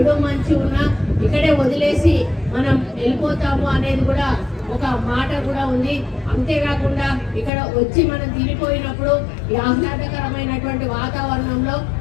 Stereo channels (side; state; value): right; drops out; at 7.5 s